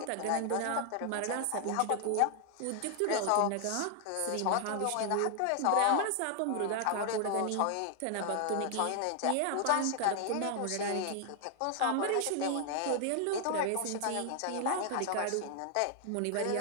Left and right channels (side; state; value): both; different; correlation 0.00